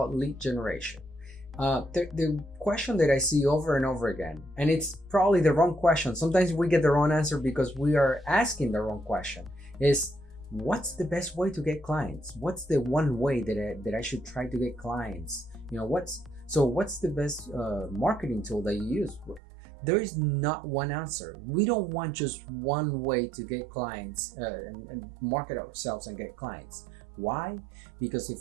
lead generation. The question that I see over and over again, and it's probably the wrong question. Sometimes we get the wrong answer because we are asking the wrong question, is what's the best way to get clients? What's the one way that I should try to get clients? What's the best marketing tool that you use? There is not one answer. We don't want just one way to get clients and market ourselves and get clients. Why? Because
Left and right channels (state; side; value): drops out; left; at 19.4 s